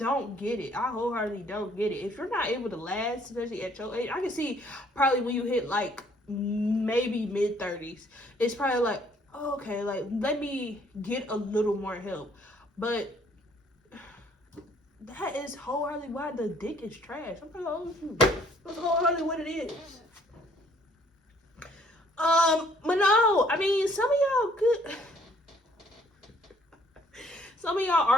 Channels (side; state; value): both; normal; correlation 0.62